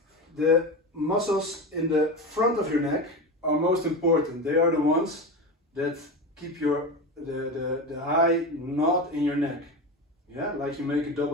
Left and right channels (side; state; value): both; normal; correlation 0.23